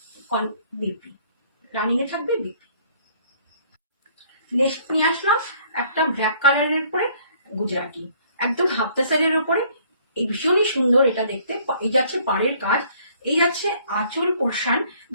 বিপি, রানিং এ থাকবে বিপি। নেক্সট নিয়ে আসলাম একটা ব্ল্যাক কালারের উপরে গুজরাটি, একদম হাফ তাসারের উপরে। এই ভীষণই সুন্দর এটা দেখতে। এই যাচ্ছে পাড়ের কাজ, এই যাচ্ছে আঁচল পোর্শন।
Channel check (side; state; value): both; inverted; correlation -0.59